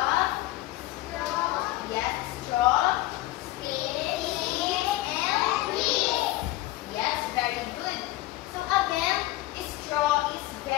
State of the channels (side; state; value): right; quieter; 17.4 dB